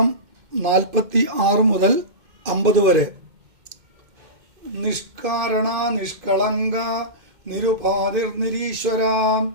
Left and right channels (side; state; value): left; late; 2.1 ms